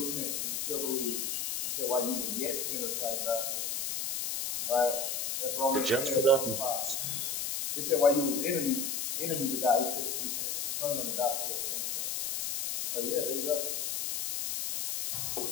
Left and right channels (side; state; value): left; noise; hiss, 1 dB below the sound